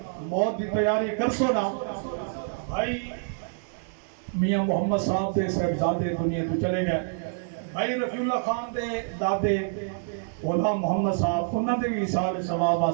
موت دی تیاری کر سونا بھائی میاں محمد صاحب دے صاحبزادے دنیا تو چلے گئے بھائی رفیع اللہ خان دے دادے غلام محمد صاحب انہوں نے بھی اصال ثواب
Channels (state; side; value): silent; left; digital silence